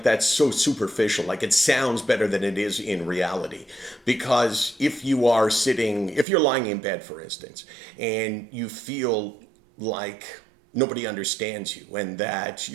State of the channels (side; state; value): left; drops out; at 6.2 s